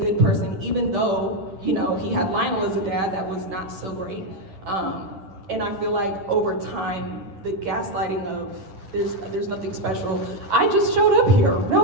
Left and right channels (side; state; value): left; late; 10 ms